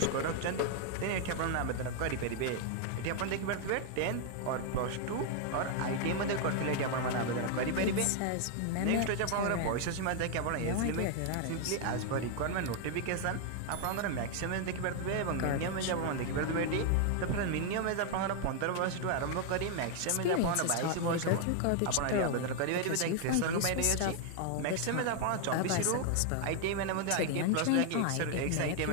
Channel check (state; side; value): different; both; correlation 0.00